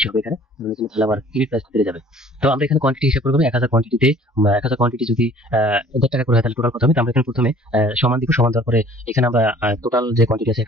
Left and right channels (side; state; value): both; normal; correlation 0.52